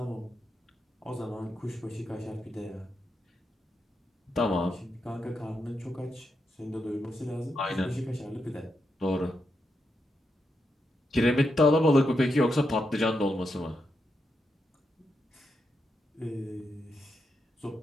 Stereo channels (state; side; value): normal; both; correlation 0.84